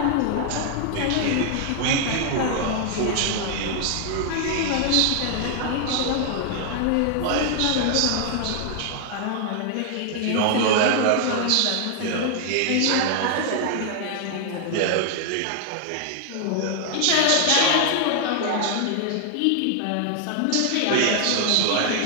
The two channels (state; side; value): different; both; correlation 0.00